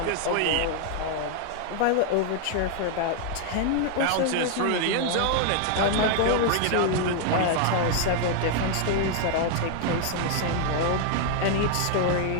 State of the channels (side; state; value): both; different; correlation 0.00